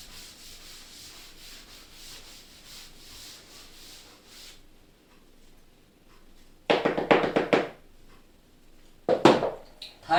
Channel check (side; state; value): both; identical; correlation 1.00